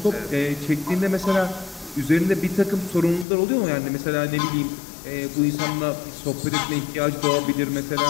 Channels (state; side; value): drops out; right; at 3.2 s